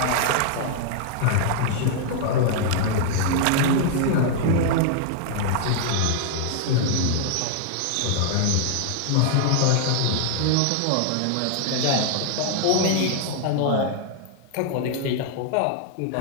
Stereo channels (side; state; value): both; different; correlation 0.00